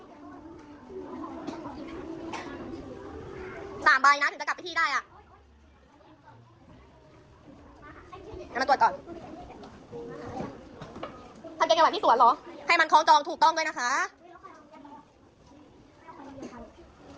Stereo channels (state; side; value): identical; both; correlation 1.00